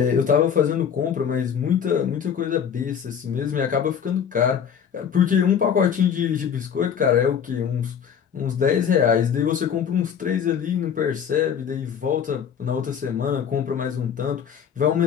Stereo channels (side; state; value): right; quieter; 7.9 dB